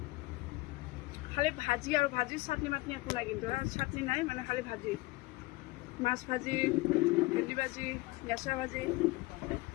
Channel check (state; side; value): quieter; right; 22.0 dB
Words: খালি ভাজি আৰু ভাজি, চাটনি মাটনি একো নাই, কিন্তু চাটনি নাই মানে খালি ভাজি, মাছ ভাজি, ভেন্দি ভাজি, নেচা ভাজি।